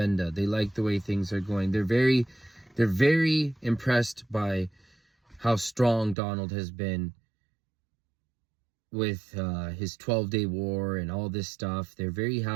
They like the way things are going. They're very impressed by how strong Donald has been with his 12-day war and all this stuff. They're very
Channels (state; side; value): drops out; left; at 6.2 s